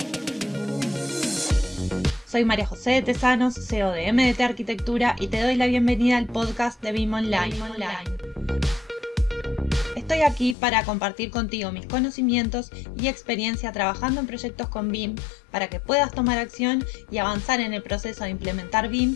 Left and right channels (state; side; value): drops out; right; at 10.6 s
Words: Soy María José de Tesanos, CEO de MDT Arquitectura, y te doy la bienvenida al podcast de BIM Online. Estoy aquí para compartir contigo mis conocimientos y experiencia trabajando en proyectos con BIM para que puedas tomar acción y avanzar en el proceso de implementar